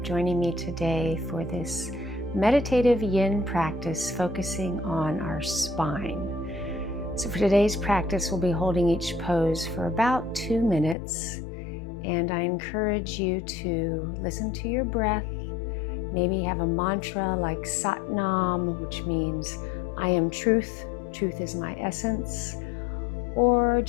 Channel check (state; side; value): drops out; right; at 11.0 s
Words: me today for this Meditative Yin practice focusing on our spine. So for today's practice, we'll be holding each pose for about 2 minutes, and I encourage you to listen to your breath. Maybe have a mantra like Sat Nam, which means I am truth, truth is my essence, or